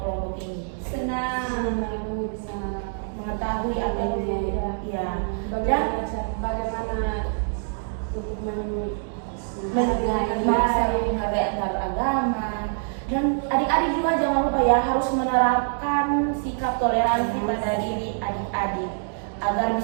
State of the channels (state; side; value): silent; left; digital silence